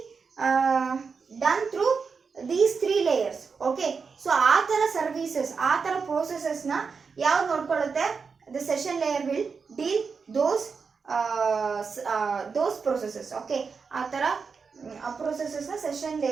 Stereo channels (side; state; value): left; quieter; 5.3 dB